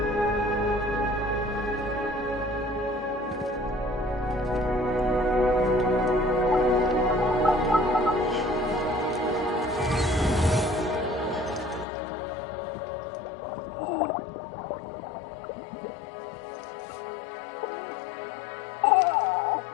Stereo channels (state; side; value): drops out; right; at 11.9 s